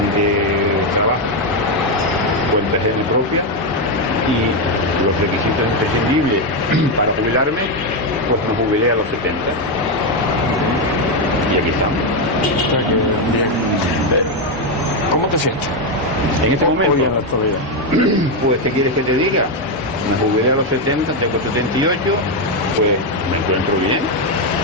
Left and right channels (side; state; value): both; normal; correlation 0.05